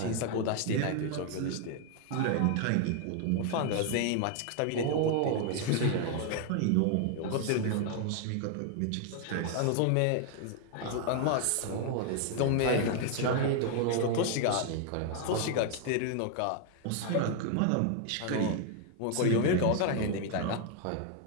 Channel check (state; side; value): different; both; correlation 0.00